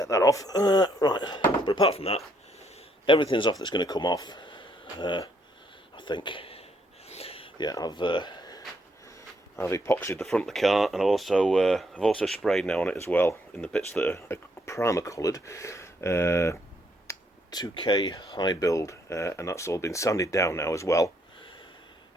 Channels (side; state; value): both; normal; correlation 0.72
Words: that off. Right, but apart from that, everything's off that's going to come off. I think. Yeah, I've epoxied the front of the car, and I've also sprayed now on it as well in the bits that are primer coloured. 2K high build, and that's all been sanded down now as well,